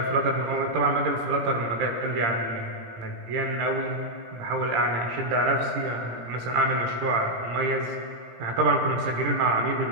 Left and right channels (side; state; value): left; late; 17 ms